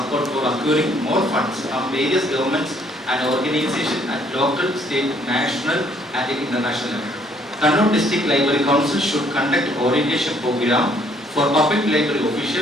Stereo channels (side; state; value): both; normal; correlation 0.64